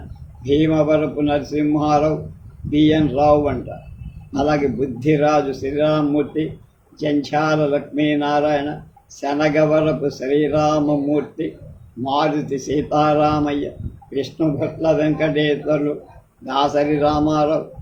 భీమవరపు నరసింహారావు, బిఎన్ రావు అంటారు. అలాగే బుద్ధిరాజు శ్రీరామమూర్తి, జంఛాల లక్ష్మీనారాయణ, శనగవరపు శ్రీరామమూర్తి, మారుతి సీతారామయ్య, విష్ణుభట్ల వెంకటేశ్వర్లు, దాసరి రామారావు,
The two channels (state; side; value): identical; both; correlation 1.00